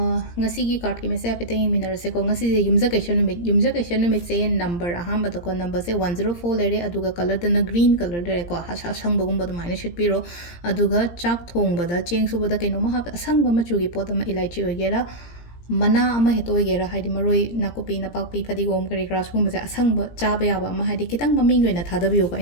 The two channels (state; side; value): late; right; 17 ms